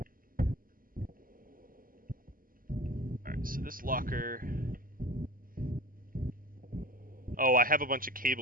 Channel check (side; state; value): left; late; 0.41 ms